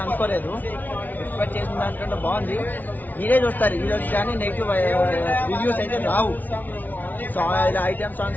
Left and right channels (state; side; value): late; right; 0.082 ms